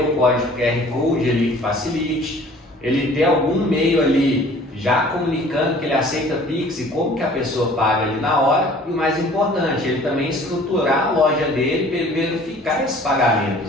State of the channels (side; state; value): both; normal; correlation 0.50